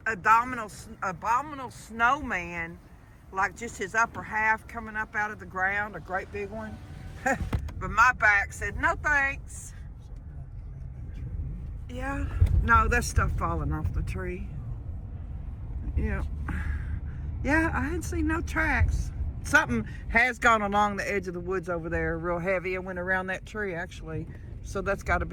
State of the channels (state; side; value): identical; both; correlation 1.00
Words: abominable snowman, like just his upper half coming up out of the ground, a great big one. But my back said, no thanks. Yeah, no, that's stuff falling off the tree. Yeah. Yeah, I hadn't seen no tracks. Something has gone along the edge of the woods over there real heavy and went around that tree actually. So that's got to